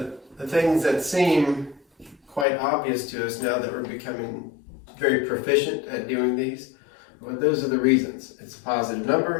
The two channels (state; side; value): drops out; right; at 2.5 s